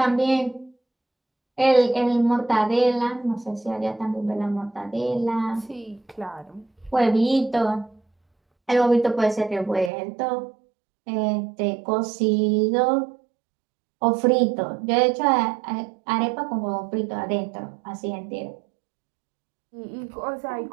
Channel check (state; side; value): drops out; left; at 9.9 s